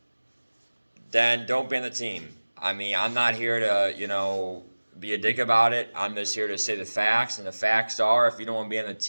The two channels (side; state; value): both; inverted; correlation -1.00